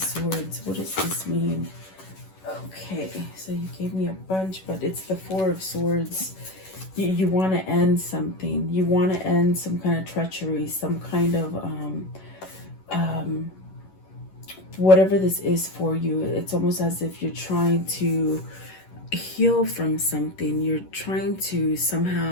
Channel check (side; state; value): right; late; 11 ms